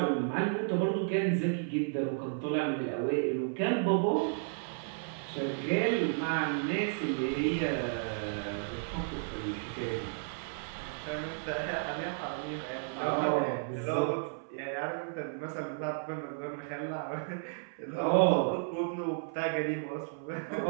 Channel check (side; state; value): left; silent; 56 dB below the other